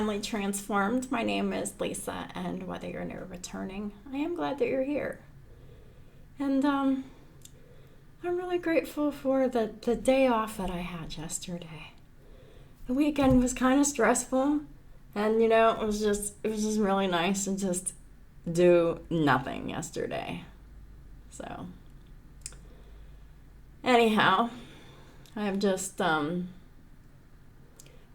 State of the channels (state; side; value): identical; both; correlation 1.00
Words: Transformed. My name is Lisa, and whether you're new or returning, I am glad that you're here. And I'm really grateful for the day off that I had yesterday. The weekend was kind of stressful, and it was just really nice to just do nothing yesterday. So anyhow, I've just